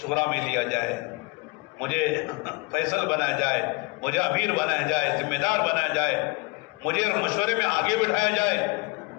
میں لیا جائے، مجھے فیصل بنایا جائے، مجھے امیر بنایا جائے، ذمہ دار بنایا جائے، مجھے مشورے میں آگے بٹھایا جائے.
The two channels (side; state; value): right; quieter; 27.6 dB